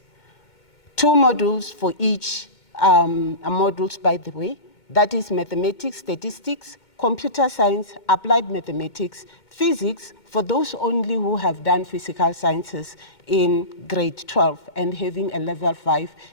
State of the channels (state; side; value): late; right; 2.2 ms